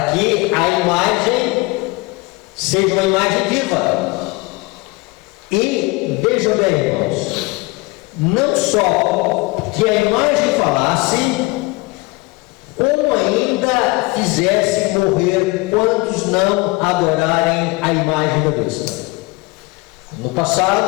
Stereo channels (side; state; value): right; quieter; 23.7 dB